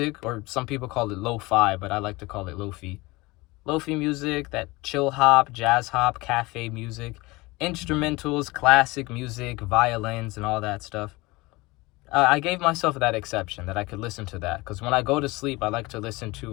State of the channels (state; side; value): quieter; right; 22.5 dB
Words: or some people call it lo-fi, but I like to call it lo-fi. Lo-fi music, that chill hop, jazz hop, cafe music. Instrumentals, classic music, violins, and all that stuff. I gave myself that exception that I could listen to that, because when I go to sleep, I like to listen